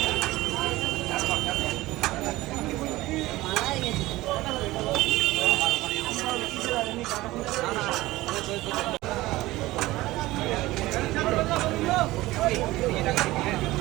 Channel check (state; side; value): quieter; left; 18.2 dB